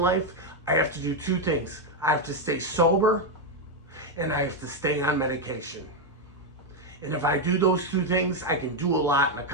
life, I have to do two things. I have to stay sober and I have to stay on medication. And if I do those two things, I can do a lot and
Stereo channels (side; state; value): both; normal; correlation 0.04